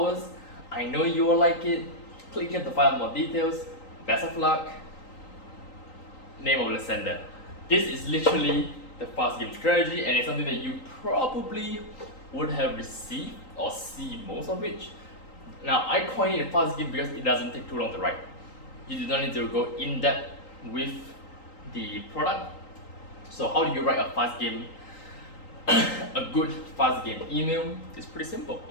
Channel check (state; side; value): late; right; 3.8 ms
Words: I know you will like it. Click here to find out more details. Best of luck. Name of the sender. This is literally the fast game strategy, and it's something that you probably would have received or see most of it. Now, I coined it a fast game because it doesn't take too long to write. You do not need to go in depth with the product. So how do you write a fast game, a good fast game email? It's pretty simple,